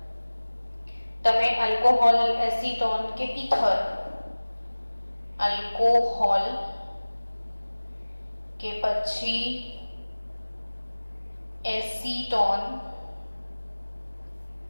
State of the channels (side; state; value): both; inverted; correlation -1.00